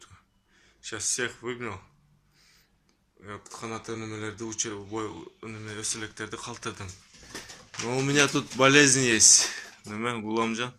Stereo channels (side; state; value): both; identical; correlation 1.00